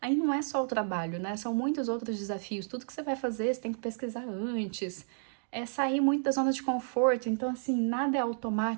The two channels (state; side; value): silent; left; digital silence